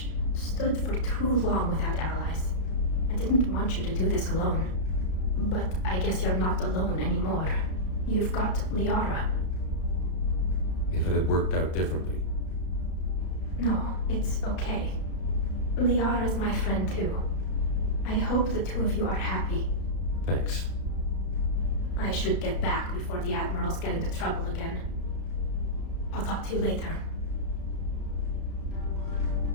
stood for too long without allies. I didn't want you to do this alone. But I guess you're not alone anymore. You've got Liara. if it had worked out differently. No, it's okay. Liara's my friend too. I hope the two of you are happy. Thanks. I should get back before the admirals get into trouble again. I'll talk to you later.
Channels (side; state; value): right; late; 33 ms